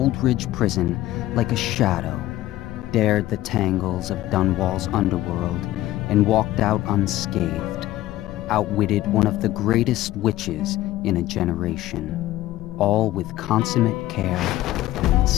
Prison like a shadow, dared the tangles of Dunwall's underworld, and walked out unscathed, outwitted one of the greatest witches in a generation, all with consummate care and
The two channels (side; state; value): right; quieter; 15.3 dB